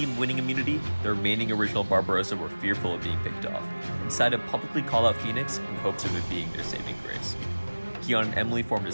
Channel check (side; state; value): both; inverted; correlation -1.00